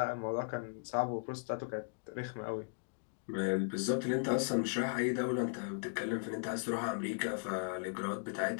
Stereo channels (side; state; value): right; silent; digital silence